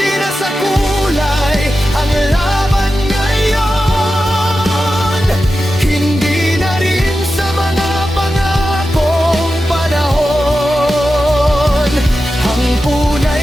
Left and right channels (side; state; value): both; normal; correlation 0.92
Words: na sa kulay ang laban ngayon, hindi na rin sa mga pangakong panahon. Ang